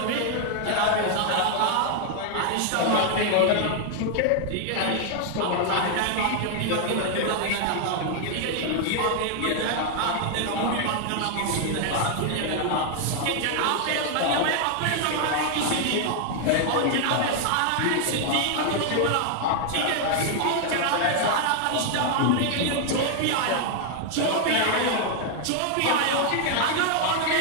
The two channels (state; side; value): different; both; correlation 0.00